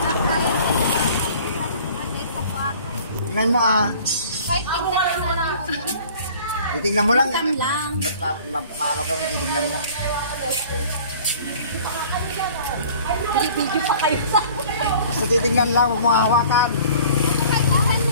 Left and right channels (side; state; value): both; inverted; correlation -0.49